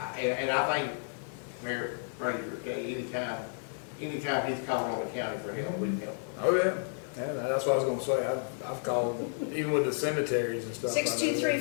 And I think, Mayor Fraser, okay, anytime anytime he's calling on the county for help, we can help. Oh, yeah. Yeah, that's what I was gonna say. I've called, even with the cemeteries and stuff.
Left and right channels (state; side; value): silent; right; digital silence